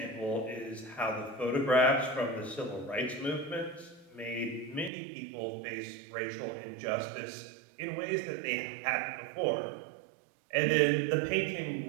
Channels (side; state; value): left; drops out; at 4.9 s